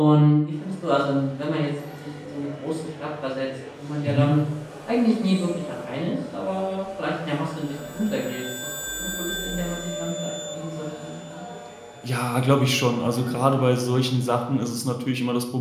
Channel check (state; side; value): identical; both; correlation 1.00